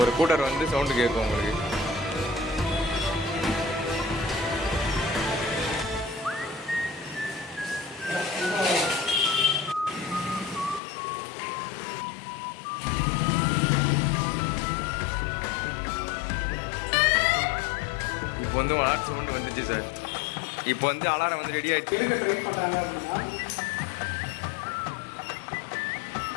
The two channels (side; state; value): right; drops out; at 10.8 s